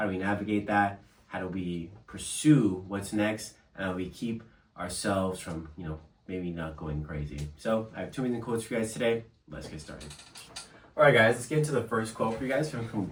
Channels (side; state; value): both; identical; correlation 1.00